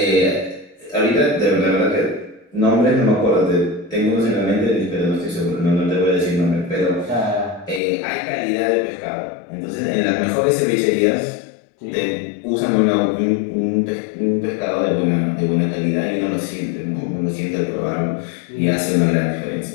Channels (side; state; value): right; drops out; at 7.8 s